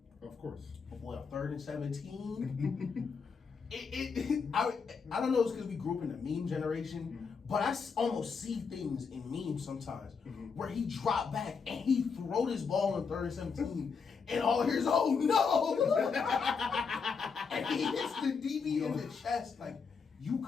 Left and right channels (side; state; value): right; quieter; 5.6 dB